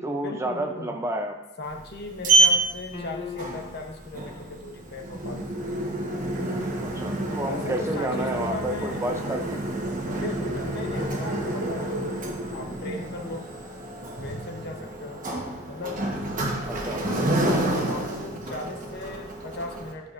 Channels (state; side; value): normal; both; correlation 0.44